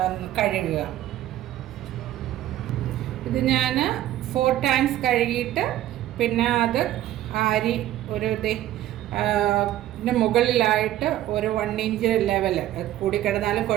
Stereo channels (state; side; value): quieter; left; 13.5 dB